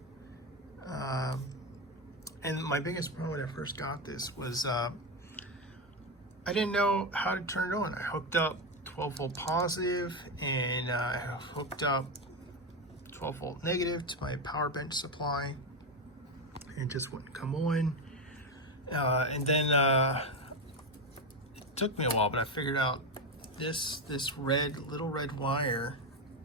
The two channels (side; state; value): both; normal; correlation 0.12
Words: And my biggest problem when I first got this was I didn't know how to turn it on. I hooked up 12 volt positive, and I hooked up 12 volt negative to my power bench supply, and it just wouldn't come on. And then it took me a while, but I figured out this little red wire